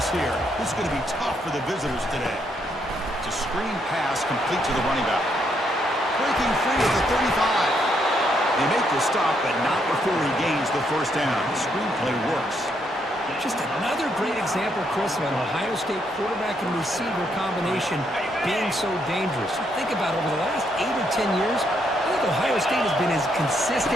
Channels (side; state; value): both; normal; correlation 0.75